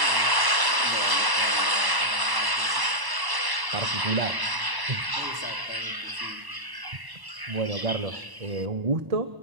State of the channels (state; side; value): late; left; 1.0 ms